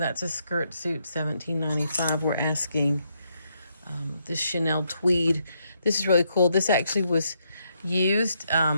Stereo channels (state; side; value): inverted; both; correlation -0.77